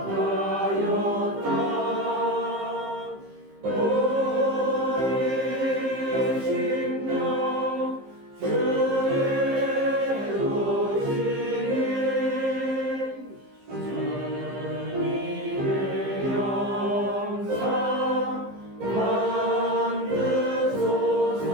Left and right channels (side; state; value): left; late; 15 ms